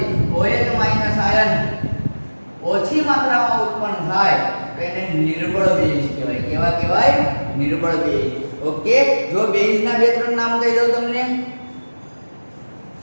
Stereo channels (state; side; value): inverted; both; correlation -1.00